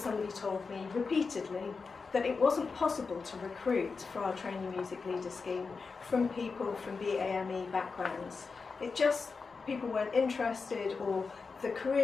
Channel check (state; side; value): quieter; right; 4.7 dB